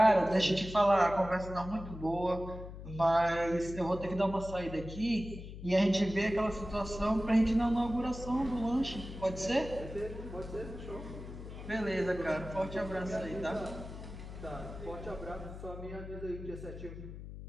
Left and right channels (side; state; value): left; noise; hum, 11 dB below the sound